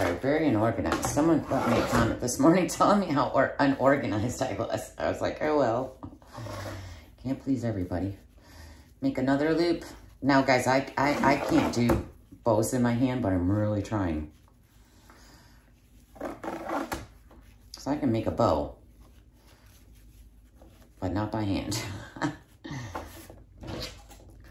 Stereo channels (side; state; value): both; identical; correlation 1.00